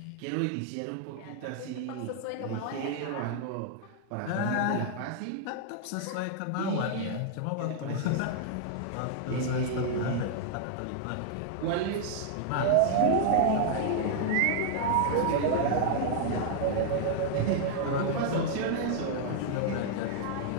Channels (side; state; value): both; different; correlation -0.01